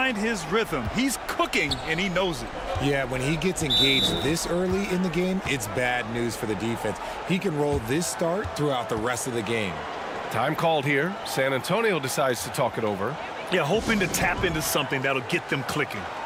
his rhythm. He's cooking, and he knows it. Yeah, when he gets engaged this early in the game, it's bad news for the defense. He can roll this start throughout the rest of the game. Time called here. San Antonio decides to talk it over. Yeah, hoping to tap into something that'll get them clicking.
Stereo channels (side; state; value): both; identical; correlation 1.00